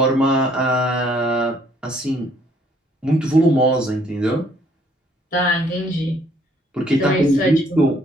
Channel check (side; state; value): both; normal; correlation 0.64